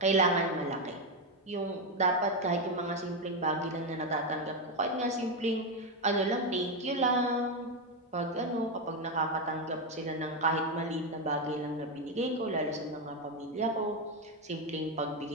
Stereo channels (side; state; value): both; normal; correlation 0.08